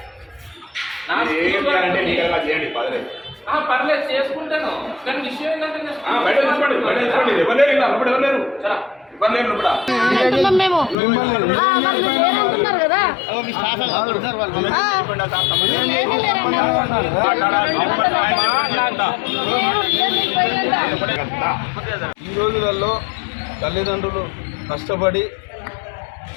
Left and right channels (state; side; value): drops out; right; at 11.0 s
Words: పర్లేదు చేసుకుంటాను, కానీ విషయం ఏంటంటే ఈ రోజులలో తల్లిదండ్రులు కష్టపడి